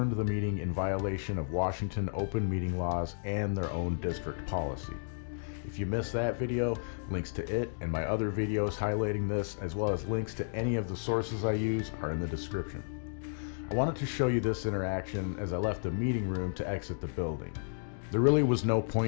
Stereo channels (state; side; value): silent; right; digital silence